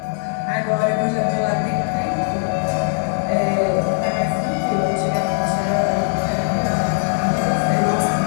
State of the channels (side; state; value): right; silent; 66 dB below the other